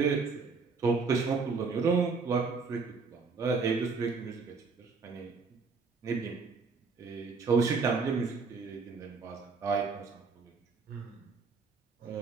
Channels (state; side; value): quieter; left; 4.7 dB